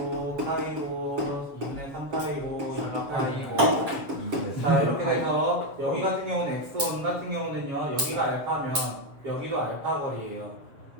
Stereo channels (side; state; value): left; late; 7.3 ms